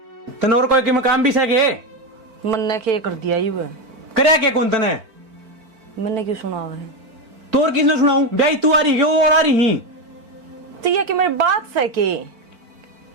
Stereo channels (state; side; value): late; left; 4.5 ms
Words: तनोर कोई के मकाम भी सके मन ने के कर दिया ही वो, करया के कौन तने मैंने क्यों सुना हुआ है? तोर किसने सुनाऊं ब्याई तू आ रही क्यों और आ रही तो ये कि मेरी बात से के